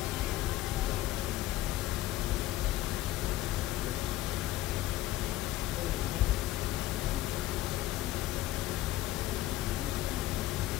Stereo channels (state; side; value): quieter; right; 15.3 dB